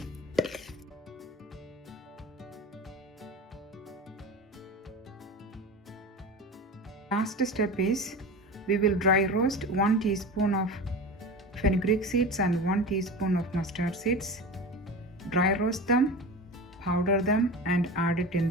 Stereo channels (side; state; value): both; normal; correlation 0.30